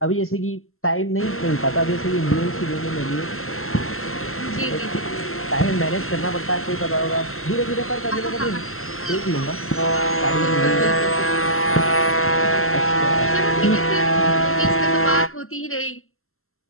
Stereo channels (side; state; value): right; late; 0.62 ms